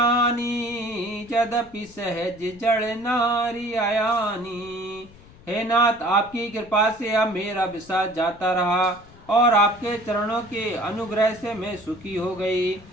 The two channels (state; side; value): noise; left; rumble, 23 dB below the sound